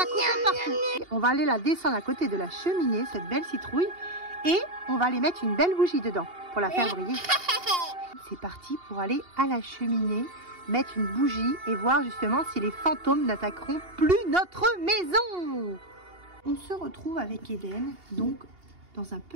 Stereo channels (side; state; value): left; late; 2.8 ms